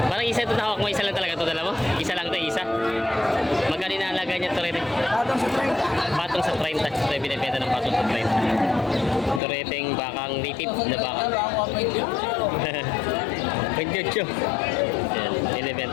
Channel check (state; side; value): drops out; right; at 9.4 s